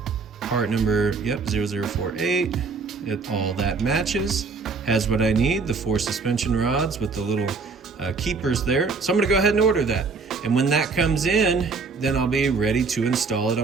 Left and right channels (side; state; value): left; quieter; 4.6 dB